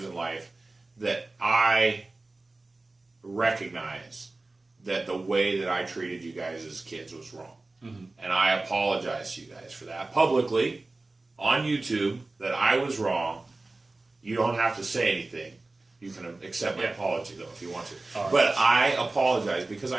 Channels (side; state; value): left; quieter; 3.2 dB